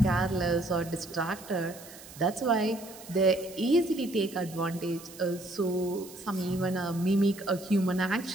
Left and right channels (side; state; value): right; noise; hiss, 18 dB below the sound